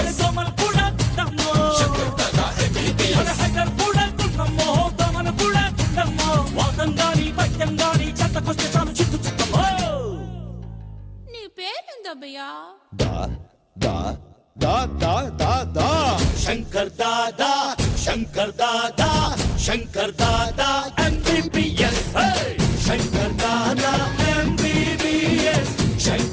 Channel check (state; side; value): identical; both; correlation 1.00